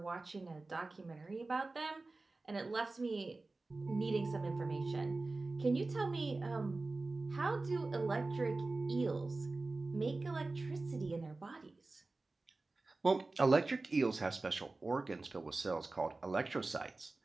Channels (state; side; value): quieter; left; 3.4 dB